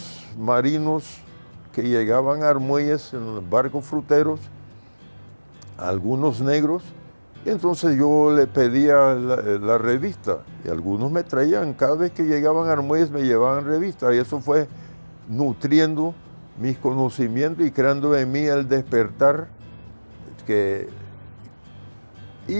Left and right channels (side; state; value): both; inverted; correlation -1.00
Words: marinos que llegaban a Armuelles en los barcos fruteros, algunos negros, y entonces yo le pedía la revista, y algunos me traían, cada vez que llegaban a Armuelles me llevaban revista, y eso fue nutriendo mis conocimientos y creando en mí el despertar.